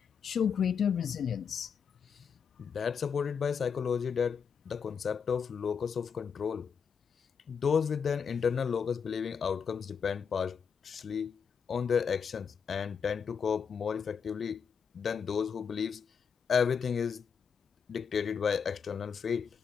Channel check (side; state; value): right; quieter; 6.6 dB